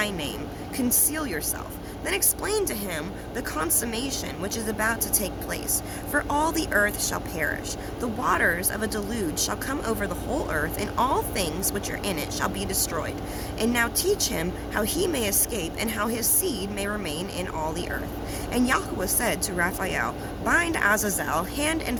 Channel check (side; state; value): both; identical; correlation 1.00